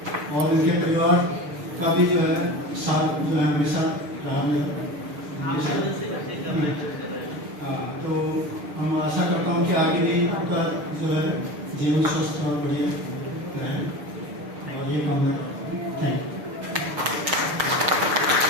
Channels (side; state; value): left; late; 6.7 ms